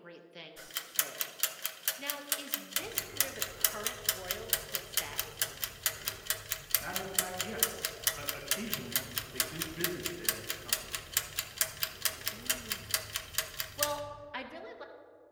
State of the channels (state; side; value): identical; both; correlation 1.00